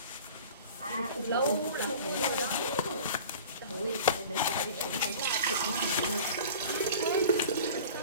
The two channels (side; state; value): both; inverted; correlation -0.40